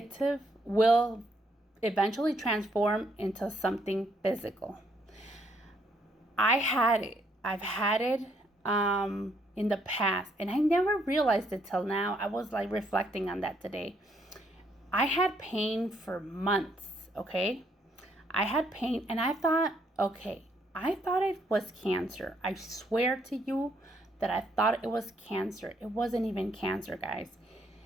will eventually transform into something physical. I've had it in the past, and I never realized it till now. I was like reflecting on that today. I had pain for months, okay? I had pain, and I thought it was cancer. I swear to you that I thought it was cancer. It wasn't even cancer, guys.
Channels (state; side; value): normal; both; correlation 0.71